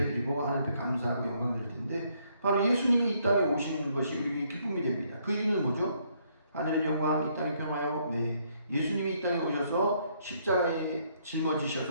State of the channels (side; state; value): both; inverted; correlation -0.70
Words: 하나님 앞에 감사하고 영광 드릴 텐데, 바로 예수님이 이 땅에 오시는 것이 우리에게 기쁨이 됩니다. 그 이유는 뭐죠? 하늘의 영광, 이 땅의 평화요. 네. 예수님이 이 땅에 오셔서 십자가에